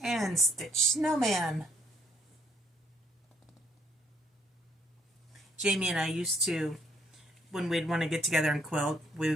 And Stitch Snowman. Jamie and I used to, when we'd want to get together and quilt,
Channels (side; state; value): both; normal; correlation 0.68